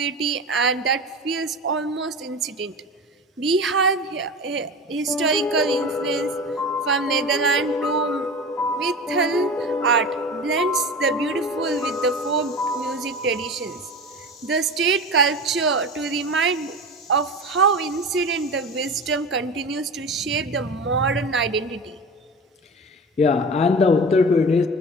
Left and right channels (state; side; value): normal; both; correlation 0.31